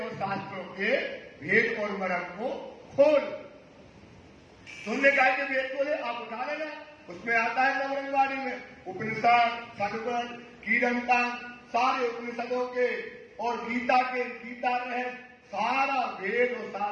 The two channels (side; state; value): both; identical; correlation 1.00